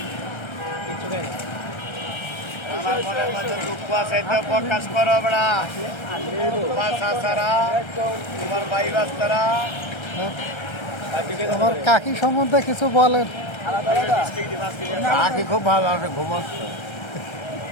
প্রকাশ করো বেড়া তোমার চাষারা তোমার ভাই বাস্তারা আমার কাকি সম্বন্ধে কিছু বলেন কাকি খুব ভালো আছে ঘুমাচ্ছে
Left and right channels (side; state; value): right; late; 1.3 ms